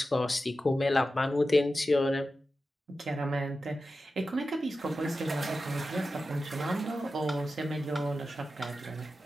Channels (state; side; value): normal; both; correlation 0.92